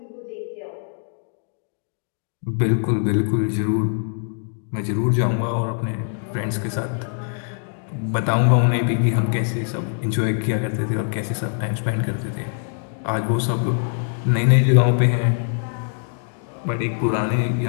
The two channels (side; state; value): right; silent; digital silence